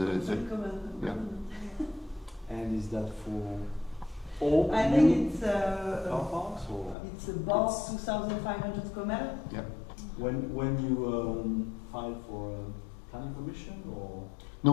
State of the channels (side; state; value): right; drops out; at 7.0 s